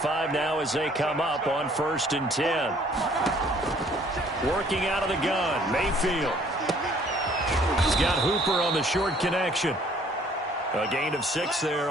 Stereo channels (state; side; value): normal; both; correlation 0.59